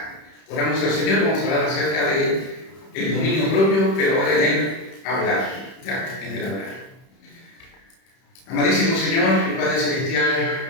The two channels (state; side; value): late; right; 31 ms